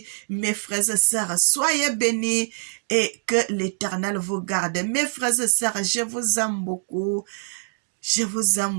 mes frères et sœurs, soyez bénis et que l'Éternel vous garde. Mes frères et sœurs, je vous aime beaucoup. Je vous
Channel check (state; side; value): silent; left; digital silence